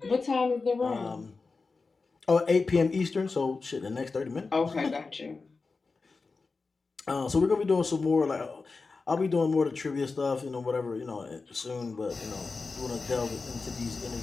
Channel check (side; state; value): right; quieter; 4.2 dB